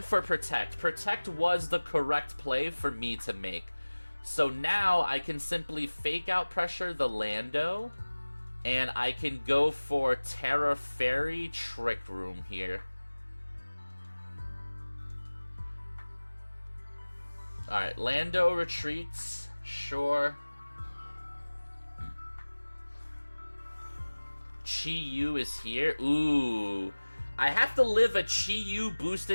for Protect. Protect was the correct play for me to make. So now, I can simply Fake Out Pressure the Lando. And I can go for Terra Fairy Trick Room here. Alright, Lando retreats. Sure. Chi-Yu is here. Ooh. I have to live a Chi-Yu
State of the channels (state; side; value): inverted; both; correlation -1.00